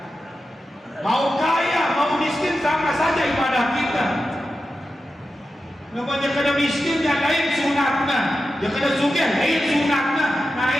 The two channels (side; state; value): both; normal; correlation 0.91